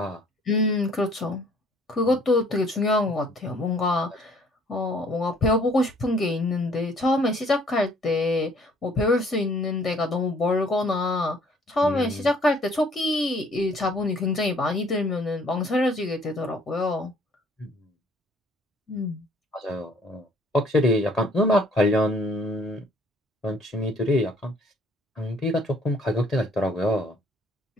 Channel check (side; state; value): both; normal; correlation 0.59